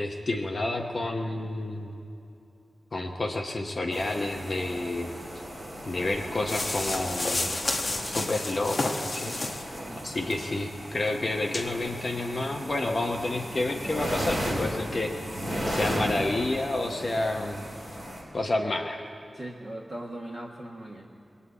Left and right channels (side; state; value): both; normal; correlation 0.94